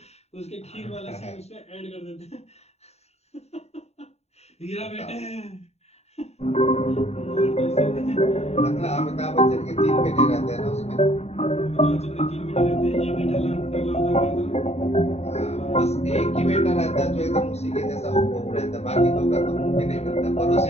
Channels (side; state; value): right; late; 0.31 ms